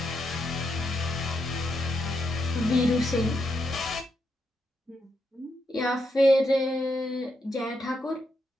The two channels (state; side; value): normal; both; correlation 0.81